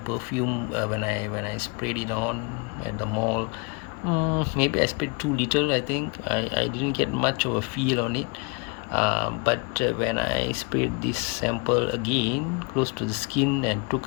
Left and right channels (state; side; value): quieter; right; 32.3 dB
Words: when I sprayed it on at the mall, maybe I sprayed too little. I think I didn't get much of a feel on it. But when I sprayed this sample again close to the skin and took